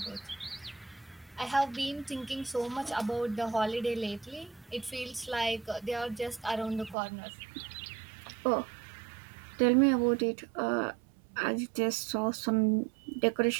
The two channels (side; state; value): left; drops out; at 7.0 s